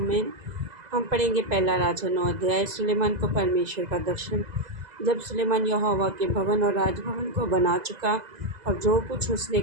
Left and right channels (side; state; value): left; late; 2.0 ms